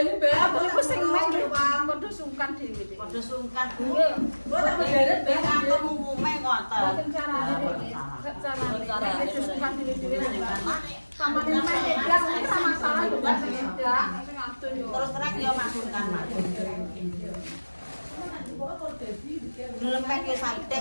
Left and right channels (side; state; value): both; inverted; correlation -1.00